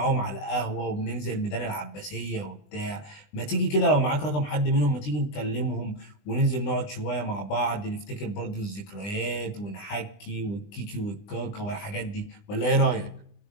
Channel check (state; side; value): late; right; 20 ms